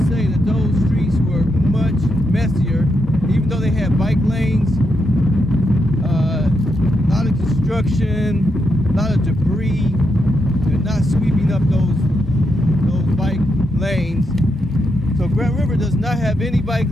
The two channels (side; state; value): both; normal; correlation 0.82